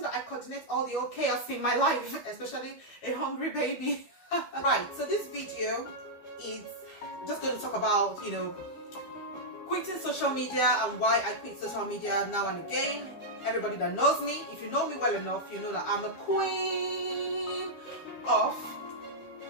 that I coordinate all the old chaos in my life, especially a hungry baby? Right, so this video is just going to talk about, you know, quitting social media and why I quit social media now and again. Everybody that knows me, if you know me well enough, you know that I'm a queen of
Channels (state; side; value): late; right; 12 ms